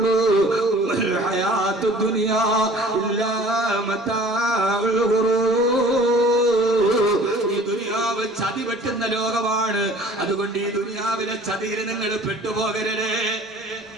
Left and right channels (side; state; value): both; normal; correlation 0.48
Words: ഹയാത്തു ദുനിയാ ഇല്ലാ മതാഉൽ ഗുറൂർ. ഈ ദുനിയാവ് ചതി വെട്ടുന്ന ലോകമാണ്. അതുകൊണ്ട് ഈ ദുനിയാവിലെ ചതിയിൽ നിങ്ങൾ പെട്ടുപോകരുത്.